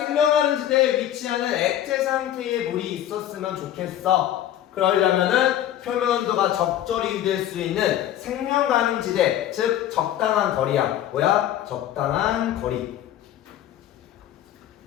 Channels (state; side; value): quieter; right; 11.7 dB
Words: 지대에 위치하는 액체 상태의 물이 있었으면 좋겠어. 그러려면은 표면 온도가 적절히 유지될 수 있는 생명 가능 지대, 즉 적당한 거리야. 뭐야? 적당한 거리.